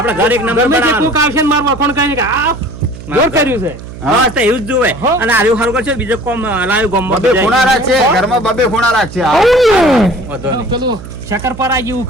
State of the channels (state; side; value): noise; right; hum, 14 dB below the sound